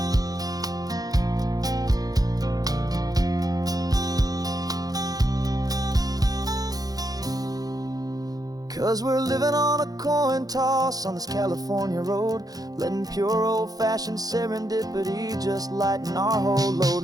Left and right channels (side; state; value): left; late; 0.18 ms